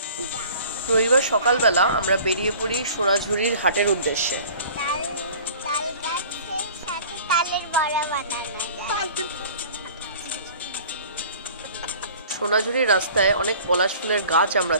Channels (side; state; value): both; inverted; correlation -0.46